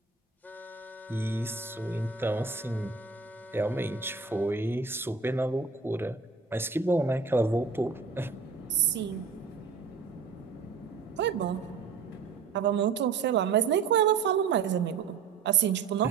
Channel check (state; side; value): quieter; left; 5.2 dB